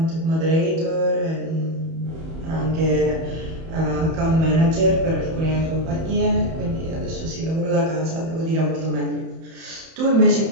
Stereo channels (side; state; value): left; late; 31 ms